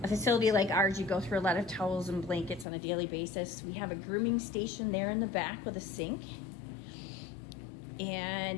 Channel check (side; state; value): right; drops out; at 2.7 s